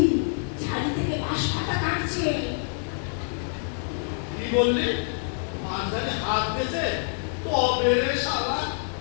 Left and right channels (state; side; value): silent; right; 59 dB below the other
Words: ঝাড়ি থেকে বাঁশ পাতা কাটছে। কি বললি? মাঝখানে হাত দিয়েছে? তবে রে শালা।